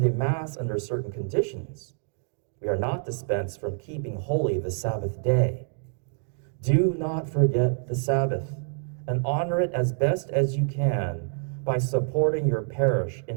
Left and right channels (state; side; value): silent; left; 60 dB below the other